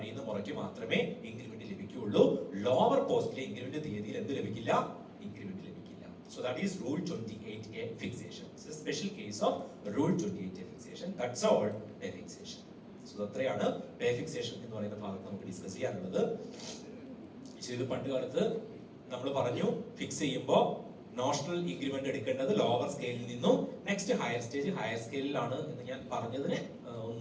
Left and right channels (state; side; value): identical; both; correlation 1.00